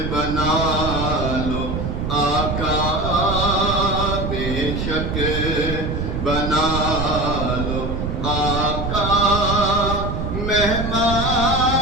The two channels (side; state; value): right; noise; rumble, 3 dB below the sound